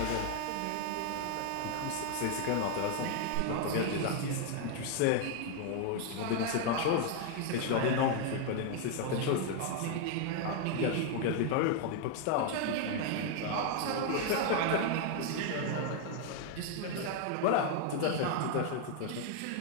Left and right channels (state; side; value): different; both; correlation 0.00